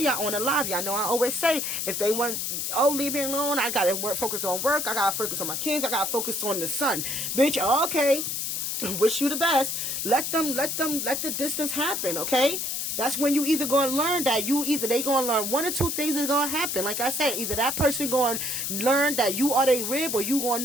on the live. Y'all know I always say, if they want, oh, leave me alone, I gotta focus on work. I gotta focus on my kids. I gotta focus on the son. Bitch, okay. Wish you the best. Let the distance happen, okay? That's when you either gonna learn that they gonna learn one or two things is gonna happen. Like I said, either that person gonna learn that you are their rib, or you gonna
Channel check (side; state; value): left; noise; hiss, 2 dB below the sound